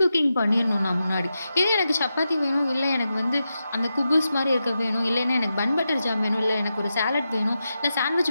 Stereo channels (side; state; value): both; inverted; correlation -0.89